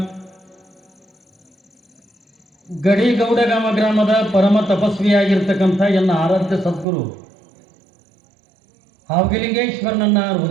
ಗಡಿಗೌಡಗಾಮ ಗ್ರಾಮದ ಪರಮ ತಪಸ್ವಿಯಾಗಿರ್ತಕ್ಕಂಥ ಎನ್ನ ಆರಾಧ್ಯ ಸದ್ಗುರು ಹಾವಗಿಲಿಂಗೇಶ್ವರನನ್ನ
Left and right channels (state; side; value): drops out; left; at 6.9 s